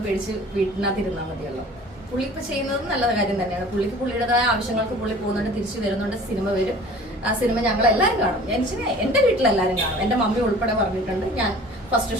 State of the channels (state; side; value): normal; both; correlation 0.46